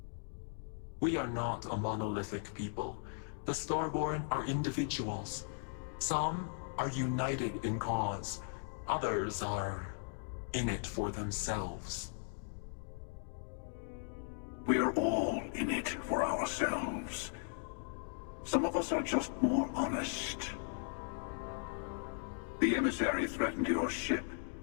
We are not a monolithic people. The Starborn are individuals. Some are united in cause. Others are in it for themselves. We're all in it for ourselves. Some of us are just more honest. The emissary threatened your ship,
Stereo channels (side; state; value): right; silent; digital silence